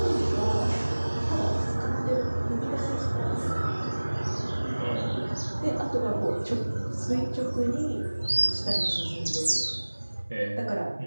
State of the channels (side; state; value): both; inverted; correlation -1.00